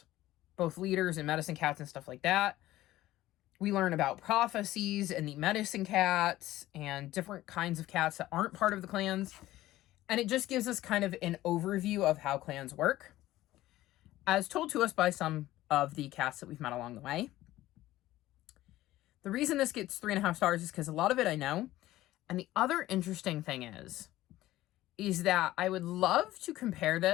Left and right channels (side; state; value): right; quieter; 15.7 dB